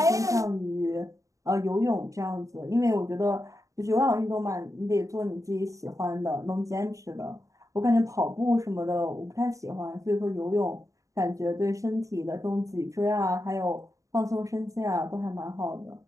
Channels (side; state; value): left; late; 0.16 ms